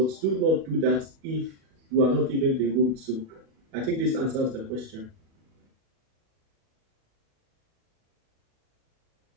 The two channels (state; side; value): late; left; 37 ms